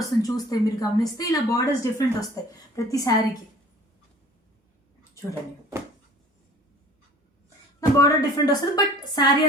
చూస్తే మీరు గమనిస్తే ఇలా బార్డర్స్ డిఫరెంట్ వస్తాయి ప్రతి శారీకి. చూడండి బార్డర్ డిఫరెంట్ వస్తుంది, బట్ శారీ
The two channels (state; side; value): normal; both; correlation 0.48